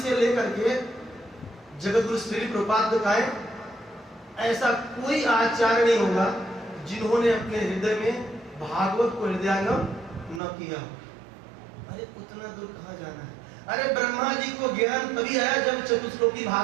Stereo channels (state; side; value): drops out; left; at 10.4 s